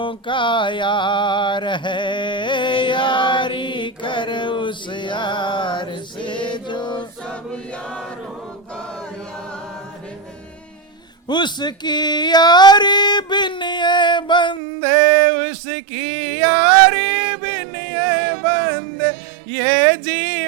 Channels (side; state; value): left; drops out; at 14.6 s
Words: का यार है, यारी कर उस यार से जो सब उसकी यारी बिन ये बंदे, उसकी यारी बिन ये बंदे, ये